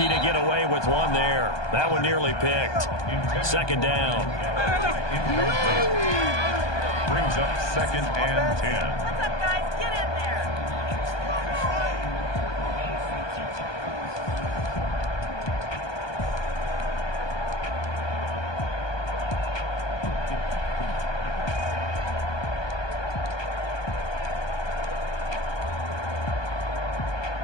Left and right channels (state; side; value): late; right; 1.2 ms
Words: to get away with one there. That one nearly picked. Second down. Brings up 2nd and 10. What's up, guys? Get in there.